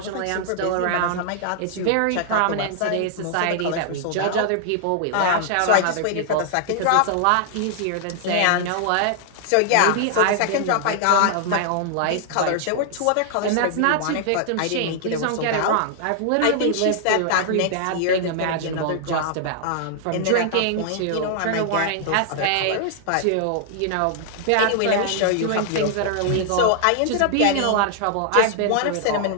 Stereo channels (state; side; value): different; both; correlation -0.01